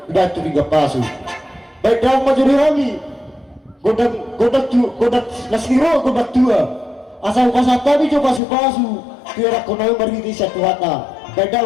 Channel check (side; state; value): right; drops out; at 8.4 s